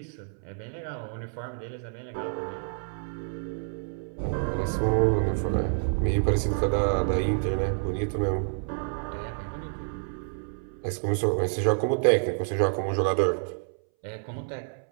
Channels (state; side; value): silent; left; 59 dB below the other